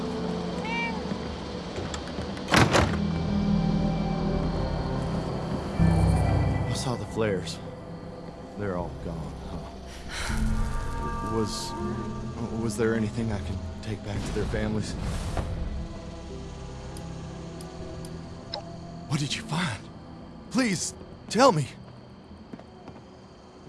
I saw the flares. They're all gone, huh? Was there anything I can take back to their families? What did you find? Please, tell me.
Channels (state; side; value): identical; both; correlation 1.00